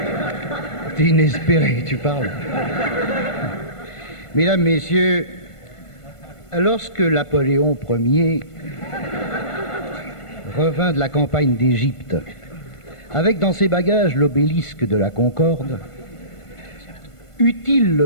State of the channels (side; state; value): right; late; 1.5 ms